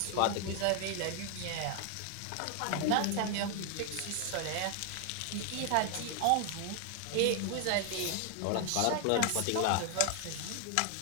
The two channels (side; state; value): both; different; correlation 0.00